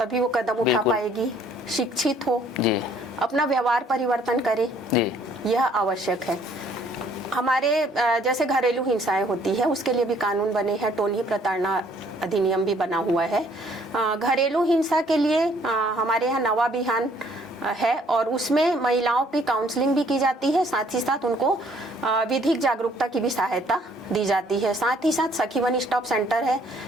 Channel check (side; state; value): both; normal; correlation 0.62